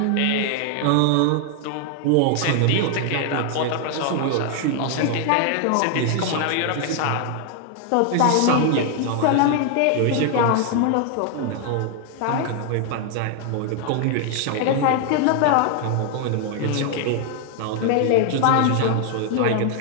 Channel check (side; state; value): both; different; correlation 0.00